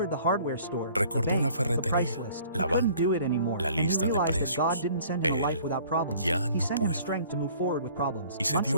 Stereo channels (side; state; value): both; inverted; correlation -0.53